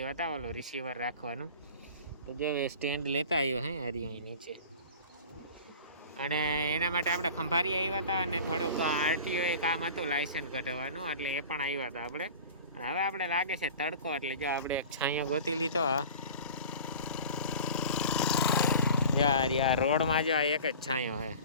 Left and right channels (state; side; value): inverted; both; correlation -0.39